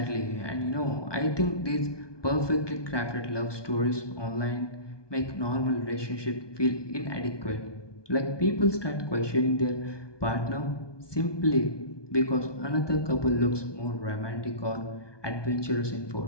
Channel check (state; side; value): late; right; 1.2 ms